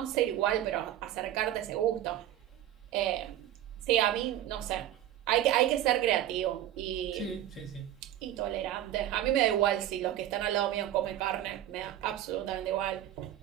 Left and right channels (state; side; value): quieter; left; 12.5 dB